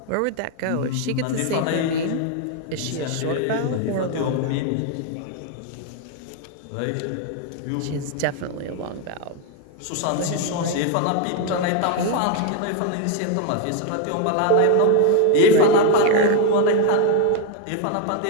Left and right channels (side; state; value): both; different; correlation 0.01